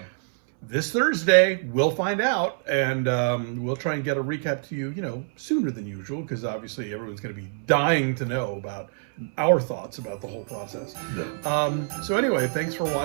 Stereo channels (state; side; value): silent; left; 61 dB below the other